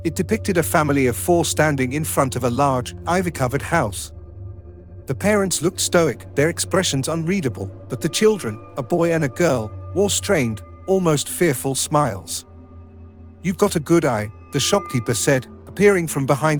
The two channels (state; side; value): identical; both; correlation 1.00